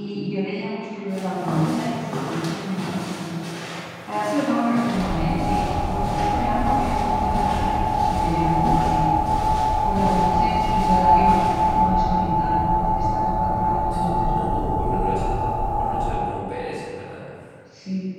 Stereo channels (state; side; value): identical; both; correlation 1.00